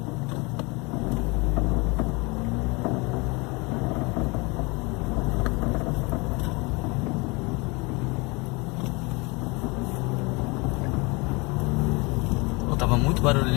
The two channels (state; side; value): quieter; right; 27.2 dB